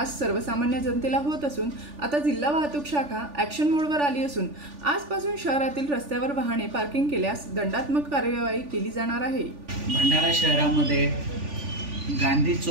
सर्वसामान्य जनतेला होत असून आता जिल्हा वाहतूक शाखा ॲक्शन मोडवर आली असून आजपासून शहरातील रस्त्यावर वाहने पार्किंग केल्यास दंडात्मक कार्यवाही केली जाणार आहे। भंडारा शहरामध्ये गांधी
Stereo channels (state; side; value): late; left; 3.4 ms